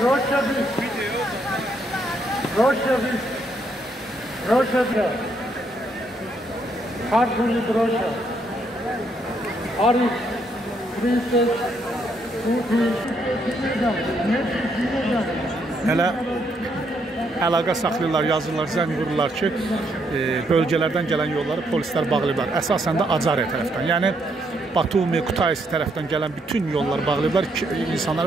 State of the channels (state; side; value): normal; both; correlation 0.74